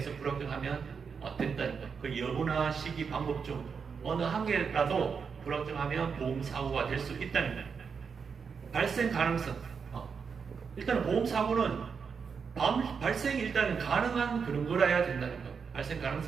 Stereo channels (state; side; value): quieter; left; 6.0 dB